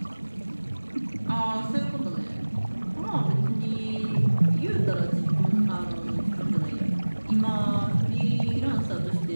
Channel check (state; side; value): inverted; both; correlation -1.00